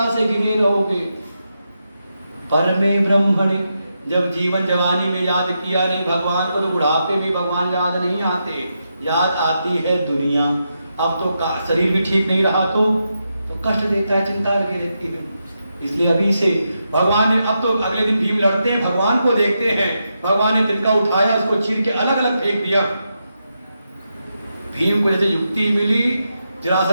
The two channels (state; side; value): inverted; both; correlation -0.85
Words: से गिने रहोगे। परमे ब्रह्मणि, जब जीवन जवानी में याद किया नहीं भगवान को तो बुढ़ापे में भगवान याद नहीं आते, याद आती है दुनिया। अब तो शरीर भी ठीक नहीं रहा तो कष्ट देता है, चिंता लगी रहती है। इसलिए अभी से भगवान ने, अब तो अगले दिन भीम लड़ते हैं, भगवान को देखते हैं, भगवान ने तिनका उठाया, उसको चीर के अलग अलग फेंक दिया। भीम को जैसे युक्ति मिली,